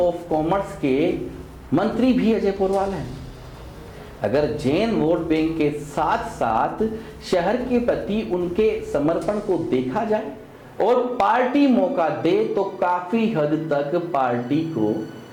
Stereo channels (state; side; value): identical; both; correlation 1.00